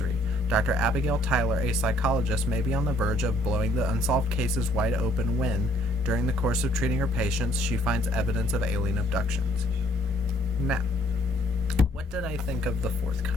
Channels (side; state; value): both; normal; correlation 0.64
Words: Dr. Abigail Tyler, a psychologist, may be on the verge of blowing the unsolved cases wide open when, during the course of treating her patients, she finds evidence of alien abductions. Now, what did I think of The Fourth